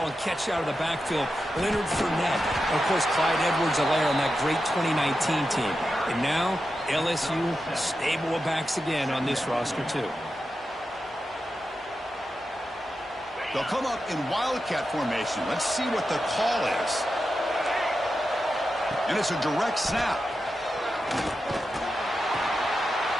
and catch out of the backfield. Leonard Fournette. And, of course, Clyde Edwards-Helaire on that great 2019 team. And now, LSU stable of backs again on this roster, too. They'll come up in Wildcat formation. Let's see what the call is. And it's a direct snap.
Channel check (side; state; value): both; normal; correlation 0.90